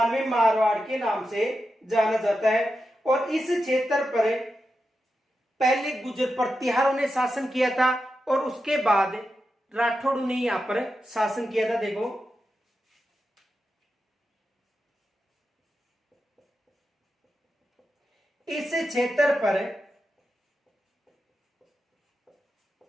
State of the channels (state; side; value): normal; both; correlation 0.89